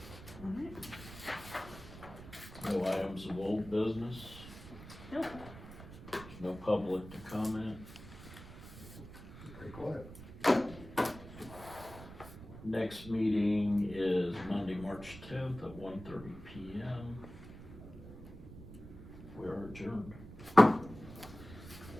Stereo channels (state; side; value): noise; right; rumble, 14 dB below the sound